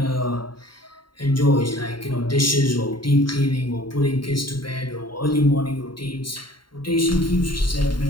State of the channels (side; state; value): right; late; 0.72 ms